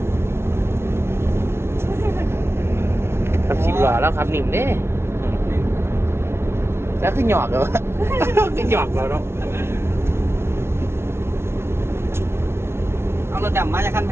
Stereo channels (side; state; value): left; late; 0.12 ms